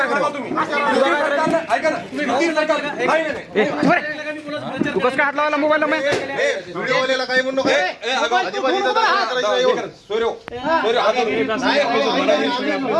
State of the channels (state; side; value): identical; both; correlation 1.00